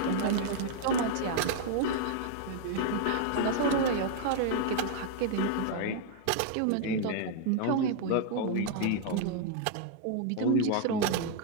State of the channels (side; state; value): both; different; correlation 0.00